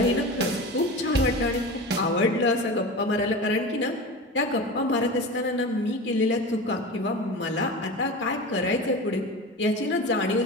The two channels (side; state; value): both; normal; correlation 0.30